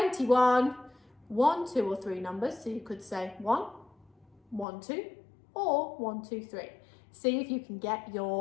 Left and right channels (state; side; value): drops out; right; at 4.7 s